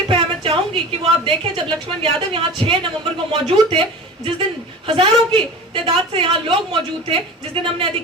है, मैं चाहूंगी कि वो आप देखें। जब लक्ष्मण यादव यहाँ 6 नवंबर को मौजूद थे, जिस दिन हजारों की तादाद से यहाँ लोग मौजूद थे, जिस दिन हमने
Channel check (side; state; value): both; normal; correlation 0.35